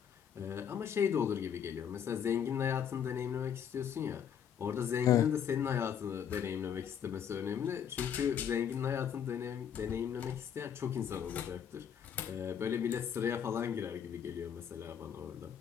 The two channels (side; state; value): right; quieter; 8.4 dB